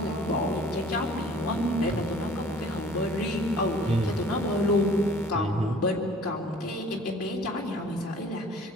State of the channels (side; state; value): both; normal; correlation 0.51